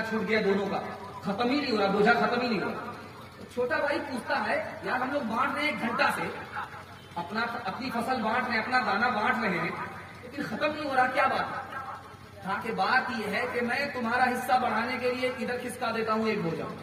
چھوٹ گیا، دونوں کا ختم ہی نہیں ہو رہا، بوجھا ختم ہی نہیں ہو رہا۔ چھوٹا بھائی پوچھتا ہے یار ہم لوگ بانٹ رہے ہیں 1 گھنٹہ سے، اپنی فصل بانٹ رہے ہیں، اپنا دانا بانٹ رہے ہیں، لیکن ختم نہیں ہو رہا، کیا بات ہے؟ کہا کہ بات یہ ہے کہ میں تمہارا حصہ بڑھانے کے لیے ادھر کھسکا دیتا ہوں ایک بوجھا۔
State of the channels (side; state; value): both; identical; correlation 1.00